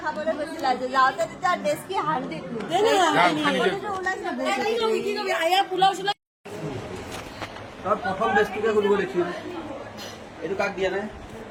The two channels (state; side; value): identical; both; correlation 1.00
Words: খাবলৈ গৈছিলা যে যাওঁতে তেতিয়া ডেস্কি হান্দি প্ৰথম বেষ্টটোকে খুলিব দেখিম এইটো কাক দিয়া নাই